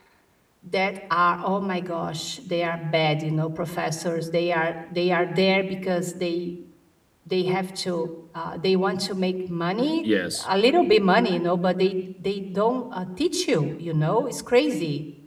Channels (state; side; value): identical; both; correlation 1.00